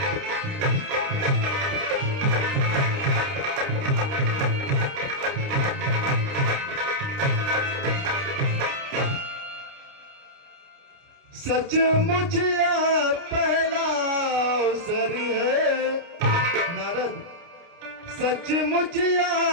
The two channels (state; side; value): late; left; 29 ms